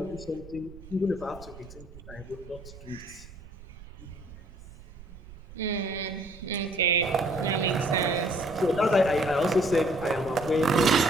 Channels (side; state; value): right; noise; rumble, 18 dB below the sound